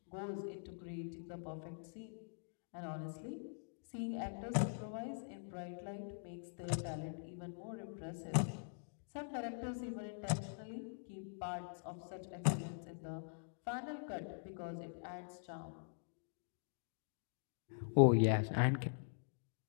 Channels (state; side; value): silent; right; digital silence